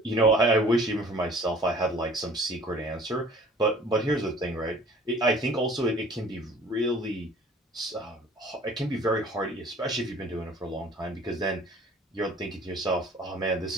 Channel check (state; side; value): normal; both; correlation 0.50